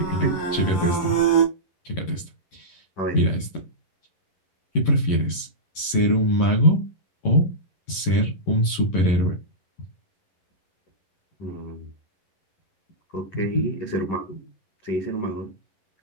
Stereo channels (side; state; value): right; late; 11 ms